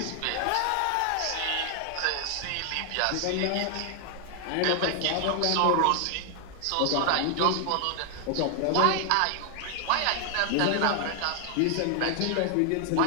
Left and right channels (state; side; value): different; both; correlation 0.00